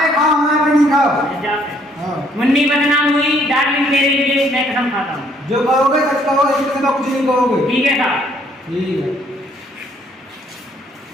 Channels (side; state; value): both; normal; correlation 0.65